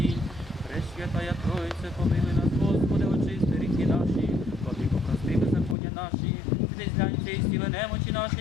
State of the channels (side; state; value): right; drops out; at 5.8 s